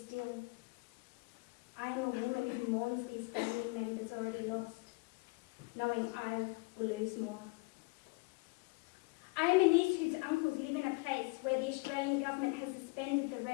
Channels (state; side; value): quieter; right; 26.7 dB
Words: I am a woman who mourns these family members already lost, knowing I will lose more. I am a niece whose uncles live in a place where the Australian government has suspended the